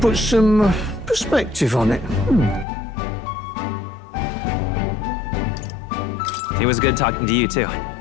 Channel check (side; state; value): right; drops out; at 2.7 s